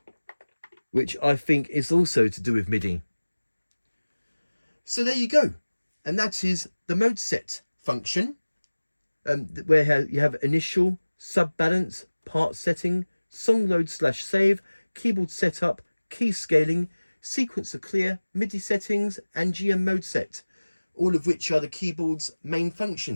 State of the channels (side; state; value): both; inverted; correlation -1.00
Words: which I think is also to do with MIDI. So there you go. And that is the mode set function, where you have initial, sub balance, part setting, song load / save, keyboard setup, key scaling, sequencer clear, MIDI settings, and GM mode set, all of which are the keyboard's main